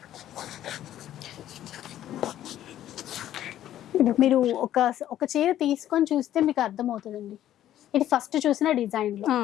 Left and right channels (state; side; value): quieter; right; 12.2 dB